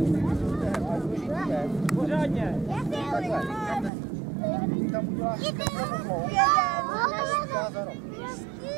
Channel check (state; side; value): drops out; left; at 3.9 s